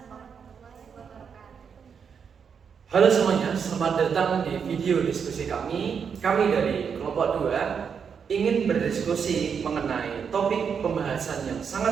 warahmatullahi wabarakatuh. Halo semuanya, selamat datang di video diskusi kami. Kami dari kelompok 2 ingin berdiskusi mengenai topik pembahasan yang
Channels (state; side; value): quieter; left; 6.7 dB